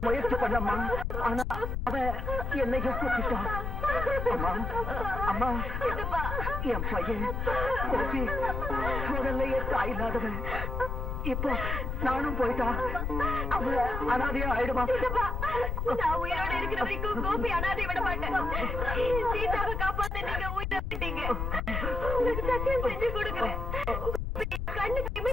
முயற்சி பண்ணம்மா. ஆனா அவ என்னையும் கூப்பிட்டான். அம்மா அம்மா, என் பையன் கோபி முதல்லையே தாய் இல்லாதவன். இப்போ நானும் போயிட்டா அவ அனாதையா ஆயிடுமா? நான் உயிரோட இருக்கிற வரைக்கும் கோபி அனாதை விட மாட்டேன். சீதாவை காப்பாத்த நீங்க உயிரை விட்டீங்க. உங்களுக்கு சத்தியம் செஞ்சு கொடுக்குறேன். கண்ணுக்கு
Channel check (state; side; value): noise; left; rumble, 2 dB below the sound